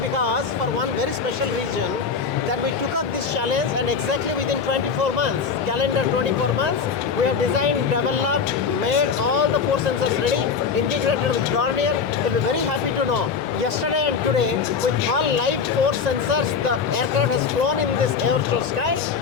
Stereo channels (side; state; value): right; quieter; 5.8 dB